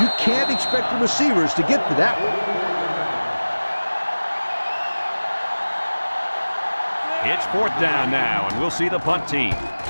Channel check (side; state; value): both; inverted; correlation -1.00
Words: can't expect the receivers to get to that one. It's 4th down now, and we'll see the punt team.